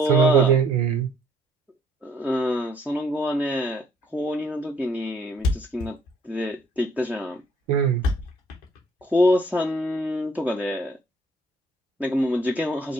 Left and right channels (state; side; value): normal; both; correlation 0.63